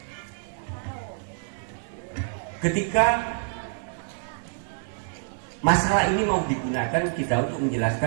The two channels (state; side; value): silent; left; digital silence